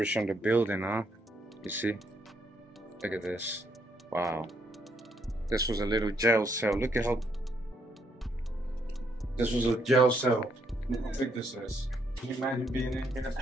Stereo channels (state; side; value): normal; both; correlation 0.73